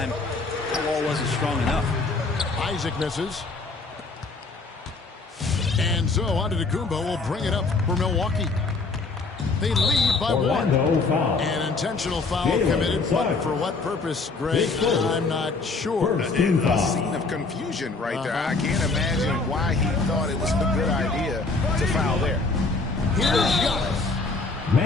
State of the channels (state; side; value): quieter; right; 3.9 dB